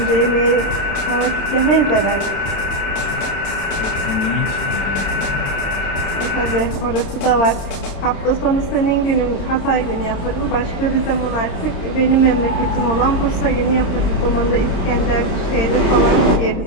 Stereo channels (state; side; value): late; right; 29 ms